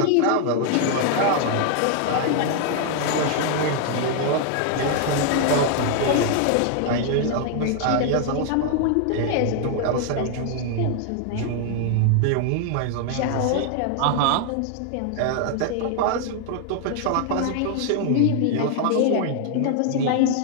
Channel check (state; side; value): different; both; correlation 0.00